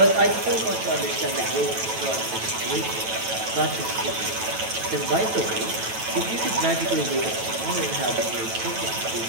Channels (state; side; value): late; left; 9.1 ms